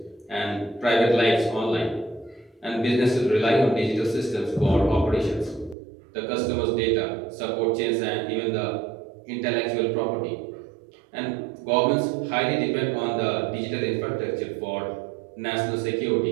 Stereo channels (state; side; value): drops out; left; at 5.8 s